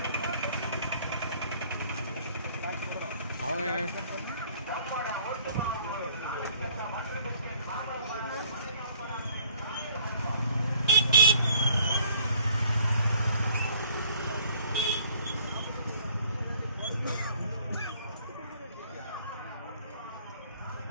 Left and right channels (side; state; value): both; inverted; correlation -0.58